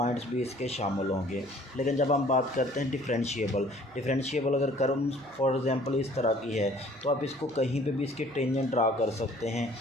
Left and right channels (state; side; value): noise; right; hum, 26 dB below the sound